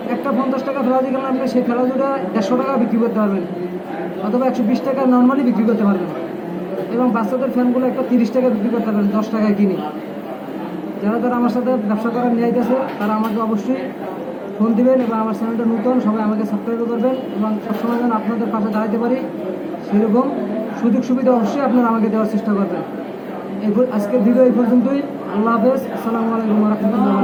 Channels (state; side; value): identical; both; correlation 1.00